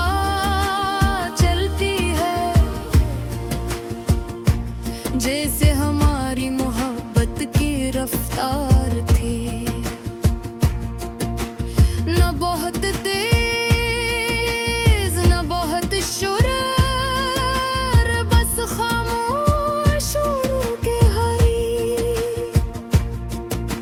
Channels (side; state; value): both; identical; correlation 1.00